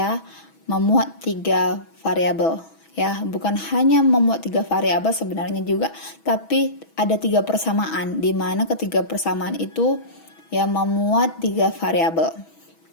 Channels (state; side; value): late; right; 6.2 ms